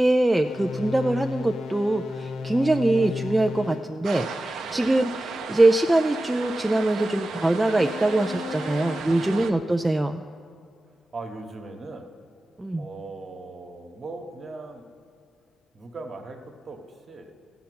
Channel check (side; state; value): both; normal; correlation 0.94